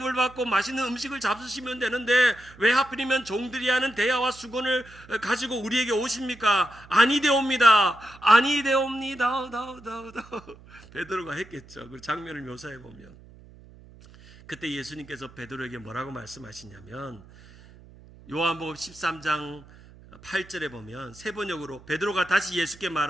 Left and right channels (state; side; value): noise; right; hum, 22 dB below the sound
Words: 받고 맛있는 음식을 잡수시면 되는데 왜 하필이면 종들이 하는 대야와 수건을 가지고 우리에게 오십니까? 아니되옵니다. 베드로가 했겠죠. 그 장면을 묘사해 보면 그때 예수님께서 베드로에게 뭐라고 말씀하시냐면 요한복음 13장 8절에 보면 세 번역으로 베드로가 다시 예수께